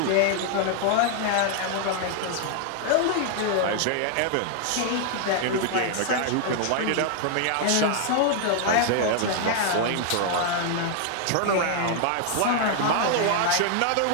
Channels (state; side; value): different; both; correlation 0.00